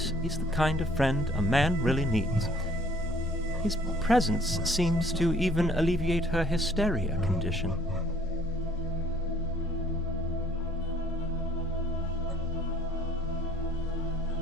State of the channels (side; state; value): both; normal; correlation 0.59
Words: is the kind of friend a man really needs. His presence seems to even alleviate her hysteria condition.